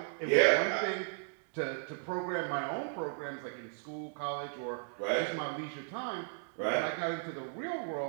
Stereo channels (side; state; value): left; silent; digital silence